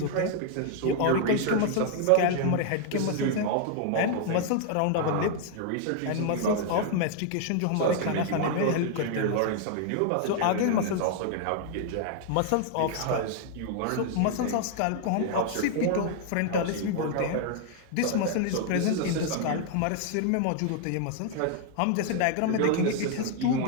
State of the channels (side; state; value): both; different; correlation 0.00